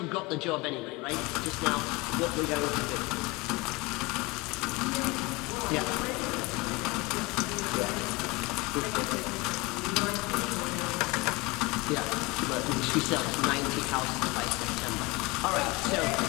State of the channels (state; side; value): quieter; right; 24.4 dB